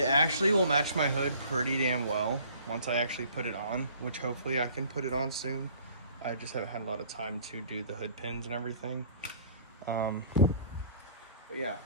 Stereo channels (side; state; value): both; inverted; correlation -0.53